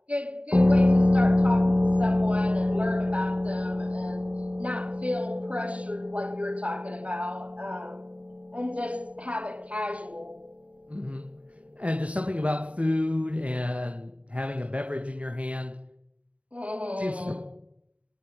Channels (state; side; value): late; left; 0.065 ms